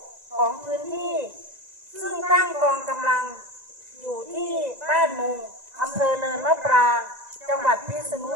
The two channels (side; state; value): left; late; 2.0 ms